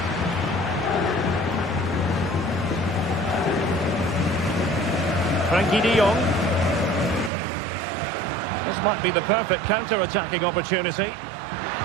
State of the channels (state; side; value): drops out; left; at 7.3 s